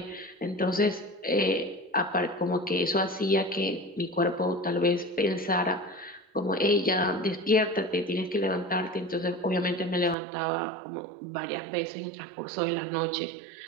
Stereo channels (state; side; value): drops out; left; at 10.2 s